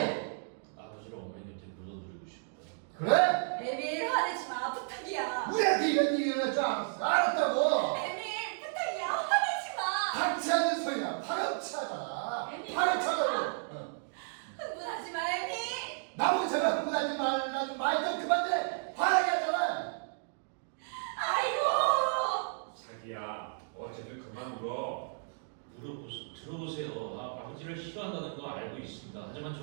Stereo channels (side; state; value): left; silent; digital silence